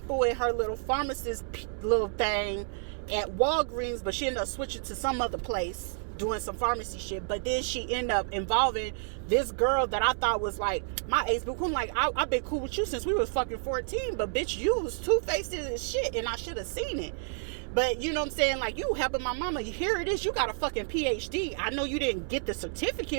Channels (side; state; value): left; silent; digital silence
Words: in her little pharmacist little thing at Walgreens, but she ended up switching to some other place, doing some pharmacy shit. But then she ended up involving this girl that I thought was my age, but I'm I've been cool with you since we was fucking 14, but bitch, you was two-faced as shit, and I should have seen it. But you know what I'm saying, you helping my mama, here it is, you got a fucking PhD. I know you didn't get the